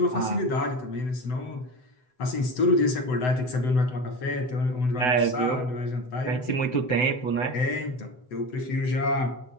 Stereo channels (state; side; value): late; right; 7.9 ms